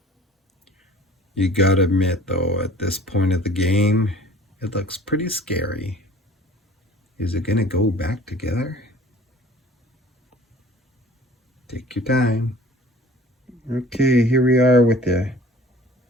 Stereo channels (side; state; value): both; normal; correlation 0.47